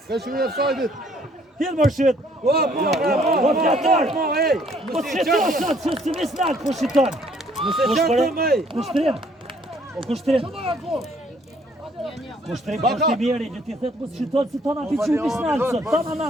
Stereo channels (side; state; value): both; normal; correlation 0.63